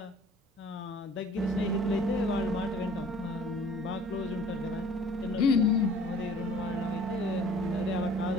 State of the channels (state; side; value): normal; both; correlation 0.52